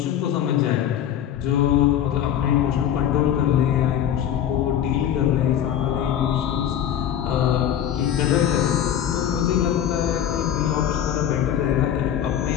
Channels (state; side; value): quieter; right; 10.1 dB